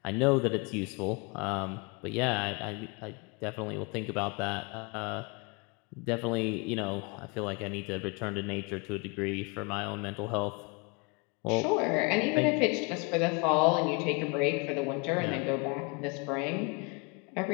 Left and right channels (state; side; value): quieter; right; 30.4 dB